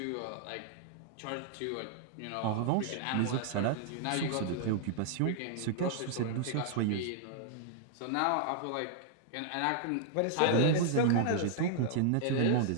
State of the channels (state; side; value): different; both; correlation -0.01